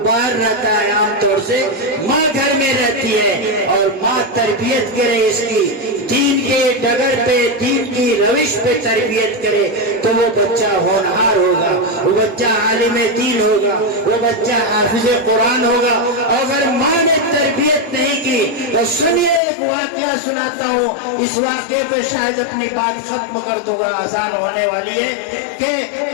باہر رہتا ہے عام طور سے, ماں گھر میں رہتی ہے اور ماں تربیت کرے اس کی, دین کے ڈگر پہ, دین کی روش پہ تربیت کرے تو وہ بچہ ہونہار ہوگا, وہ بچہ عالم دین ہوگا, وہ بچہ حافظ قرآن ہوگا. اگر ماں نے تربیت نہیں کی تو سنیے, ایک واقعہ سناتا ہوں, اس واقعے پہ شاید اپنی بات ختم کر دوں گا, آسان ہونے والی ہے. کہ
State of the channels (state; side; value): drops out; right; at 19.4 s